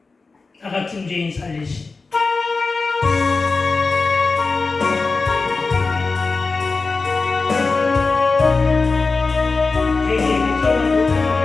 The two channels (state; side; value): quieter; right; 4.0 dB